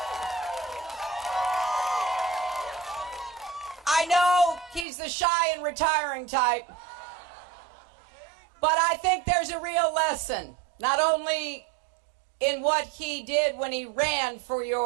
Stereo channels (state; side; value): drops out; left; at 4.9 s